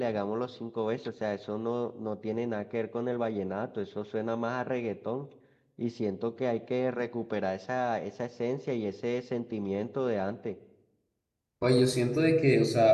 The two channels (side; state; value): both; identical; correlation 1.00